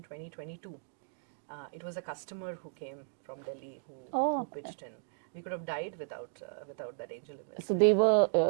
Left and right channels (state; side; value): silent; left; digital silence